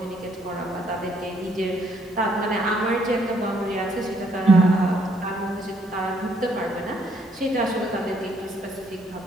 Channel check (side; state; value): both; normal; correlation 0.69